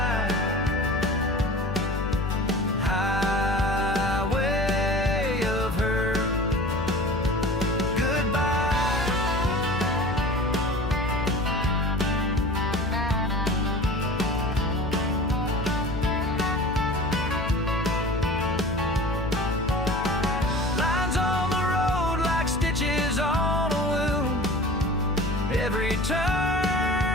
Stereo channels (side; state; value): left; noise; hum, 8 dB below the sound